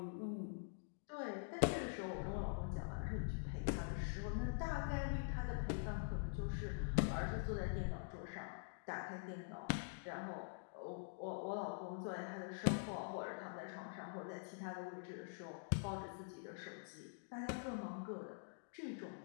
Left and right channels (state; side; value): silent; right; digital silence